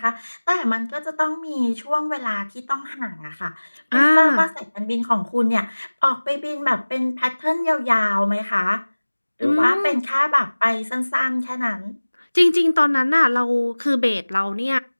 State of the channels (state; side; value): inverted; both; correlation -1.00